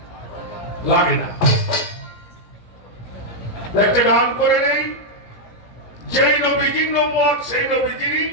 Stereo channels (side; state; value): right; late; 17 ms